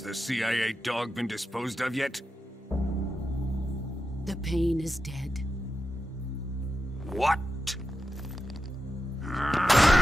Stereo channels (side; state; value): both; normal; correlation 0.89